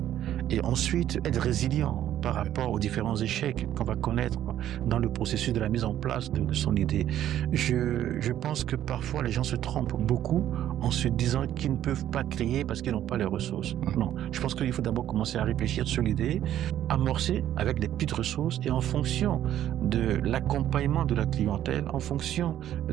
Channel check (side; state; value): left; quieter; 11.7 dB